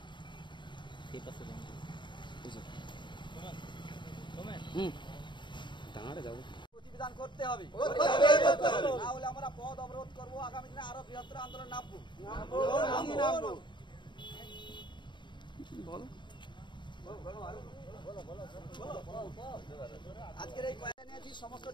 সেই পাশে টাঙাড়ে যাবো। প্রতিবিধান করতে হবে, না হলে আমরা পথ অবরোধ করবো, আগামী দিনে আরো বৃহত্তর আন্দোলন নামবো। আজকের এই জানিয়েছি, সমস্ত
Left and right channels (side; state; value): right; late; 0.22 ms